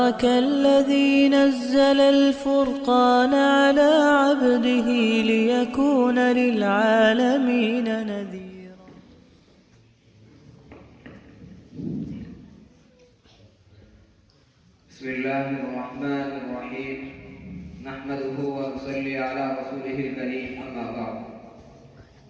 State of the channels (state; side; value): identical; both; correlation 1.00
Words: الذي نزل الفرقان على عبده ليكون للعالمين نذيرا. بسم الله الرحمن الرحيم نحمده ونصلي على رسوله الكريم أما بعد